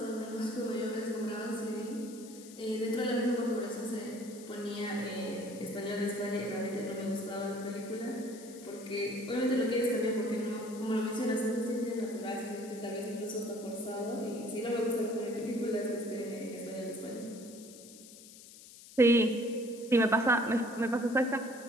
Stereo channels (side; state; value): left; noise; hiss, 18 dB below the sound